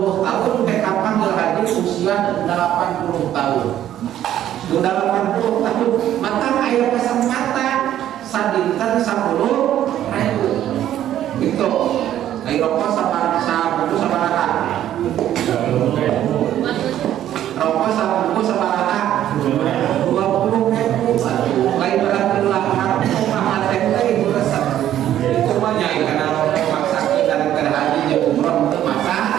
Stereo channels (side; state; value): left; quieter; 11.8 dB